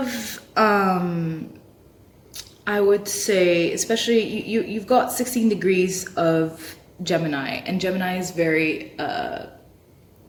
I would say, especially you've got 16 degrees of Gemini, and Gemini is very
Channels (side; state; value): both; identical; correlation 1.00